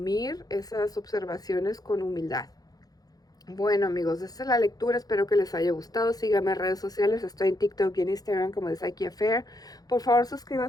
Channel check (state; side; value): late; right; 0.18 ms